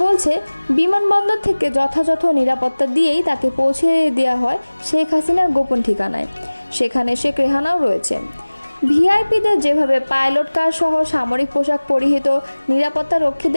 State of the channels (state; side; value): inverted; both; correlation -1.00